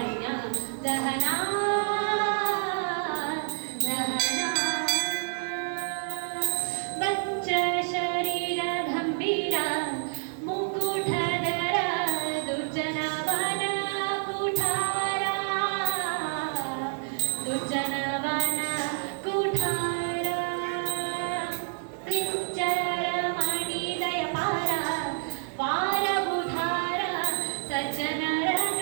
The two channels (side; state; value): left; silent; digital silence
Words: ದಹನಾ ದಹನಾ ವಂಚ ಶರೀರ ಗಂಭೀರ ಮುಕುಟಧರ ದುರ್ಜನವನ ಕುಠಾರ ದುರ್ಜನವನ ಕುಠಾರ ಕ್ಲಿಂಚರ ಮಣಿದಯ ಪಾರ ವಾರ ಬುಧಾರ ಸಜ್ಜನರ